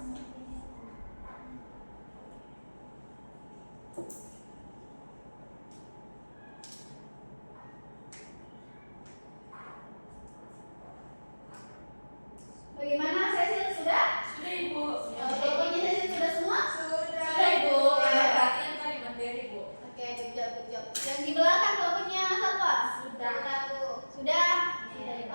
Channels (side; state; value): both; inverted; correlation -1.00